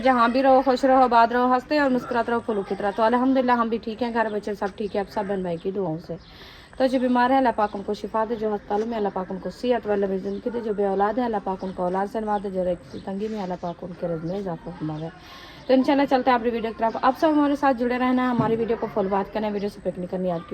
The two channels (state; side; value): identical; both; correlation 1.00